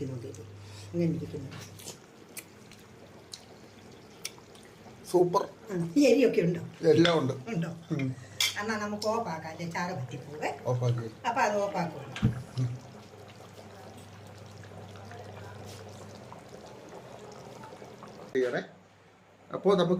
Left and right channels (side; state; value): both; identical; correlation 1.00